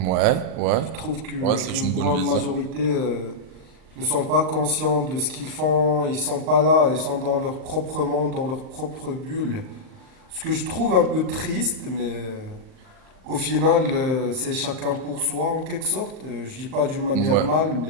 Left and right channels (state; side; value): late; left; 39 ms